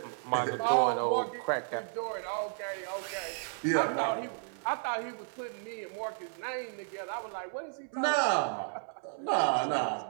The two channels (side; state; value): left; silent; 56 dB below the other